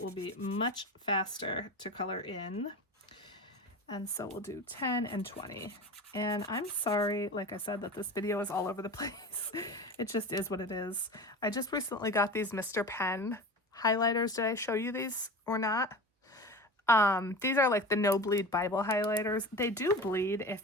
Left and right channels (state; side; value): normal; both; correlation 0.31